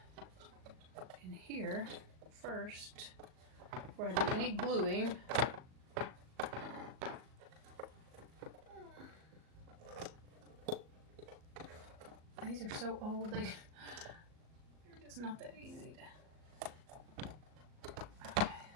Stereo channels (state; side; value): late; left; 38 ms